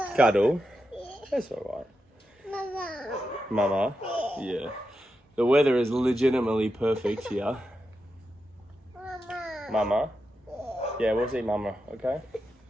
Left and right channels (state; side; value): normal; both; correlation 0.88